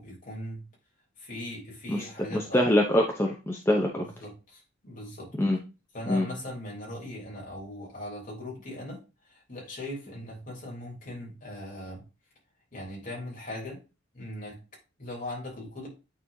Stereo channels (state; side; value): normal; both; correlation 0.73